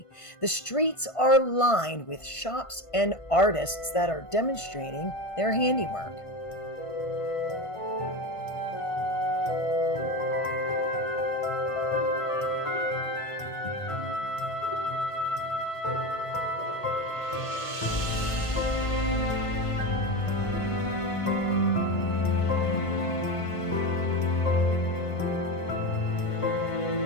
The streets are lined with shops and artists that are demonstrating their handiwork.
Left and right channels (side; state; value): right; late; 1.5 ms